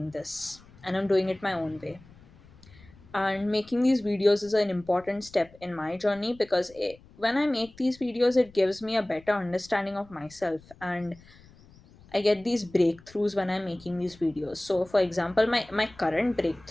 this, and I'm doing it my own way. And making these videos is an important step in my journey because when I make these videos, it gives me a better understanding of myself, and I get these breakthroughs when I'm making these videos. So, for example, my current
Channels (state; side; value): noise; left; rumble, 24 dB below the sound